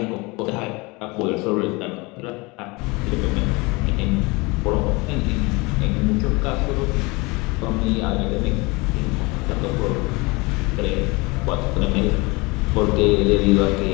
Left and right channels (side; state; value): right; quieter; 25.6 dB